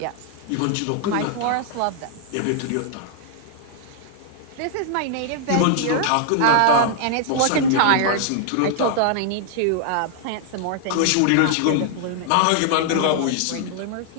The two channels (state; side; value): different; both; correlation -0.01